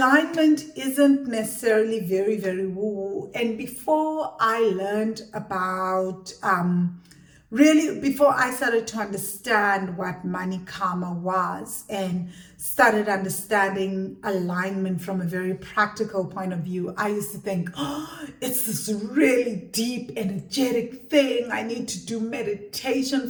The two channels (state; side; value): identical; both; correlation 1.00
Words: isn't necessarily very, very woo-woo. And before I learned about, before I started to understand what money karma was and started understanding alignment from a very practical point of view, I used to think, oh, it's this really deep, energetic thing. I need to do meditation